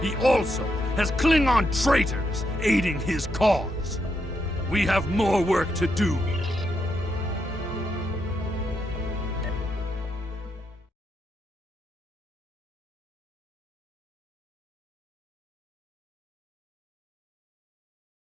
He also has Klingon traitors aiding his cause. We have more work to do.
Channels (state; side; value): normal; both; correlation 0.81